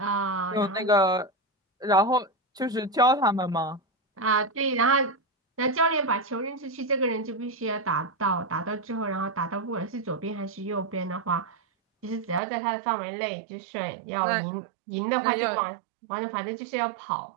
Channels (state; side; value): drops out; left; at 12.4 s